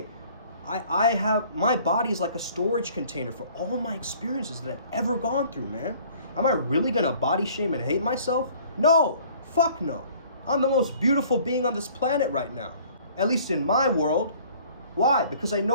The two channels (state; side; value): inverted; both; correlation -0.54